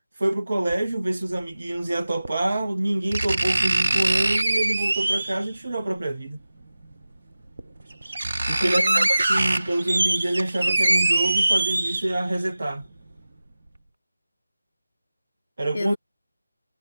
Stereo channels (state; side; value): inverted; both; correlation -0.96